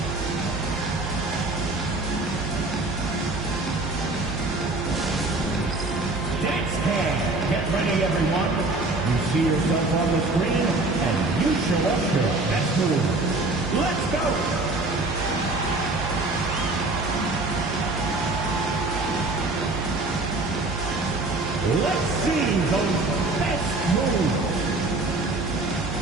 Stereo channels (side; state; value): left; quieter; 3.0 dB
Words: Get ready, everyone. You see yourself on the screen, and you show us your best move. Let's go! Let's see those best moves.